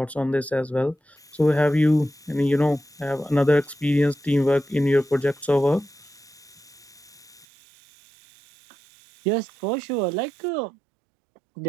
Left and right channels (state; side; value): drops out; left; at 7.5 s